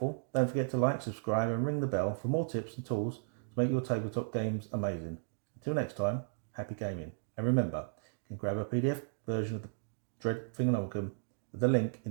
don't forget to like, subscribe, and ring the bell for more tips and tools to make your tabletop games amazing. Until next time, happy gaming. And remember, you can grab a PDF version of the Dread Thingonomicon with the link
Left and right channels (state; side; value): silent; left; digital silence